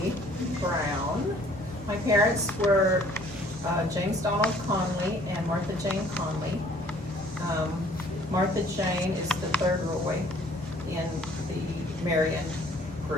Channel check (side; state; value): both; normal; correlation 0.56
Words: Brown. My parents were James Donald Conley and Martha Jane Conley. Martha Jane is the third Roye in the Marion